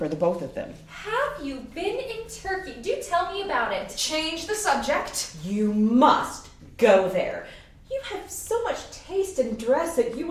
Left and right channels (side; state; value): both; identical; correlation 1.00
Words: the both of them. Have you been in Turkey? Do tell me about it. Change the subject. You must go there. You have so much taste in dress that you